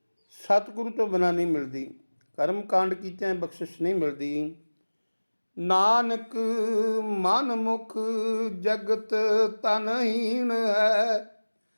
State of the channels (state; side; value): inverted; both; correlation -1.00